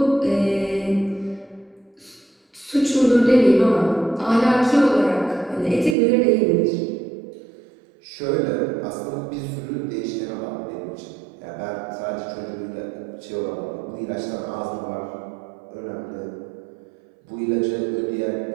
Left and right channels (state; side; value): drops out; left; at 6.0 s